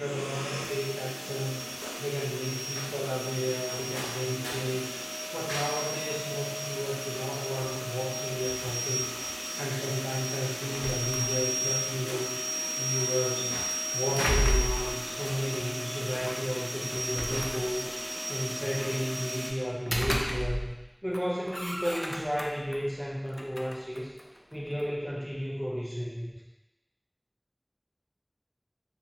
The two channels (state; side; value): identical; both; correlation 1.00